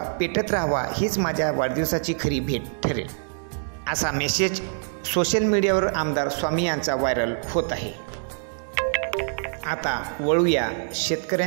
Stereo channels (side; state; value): left; silent; digital silence